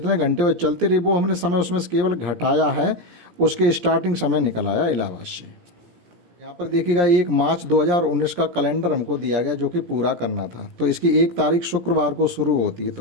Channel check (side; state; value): left; late; 17 ms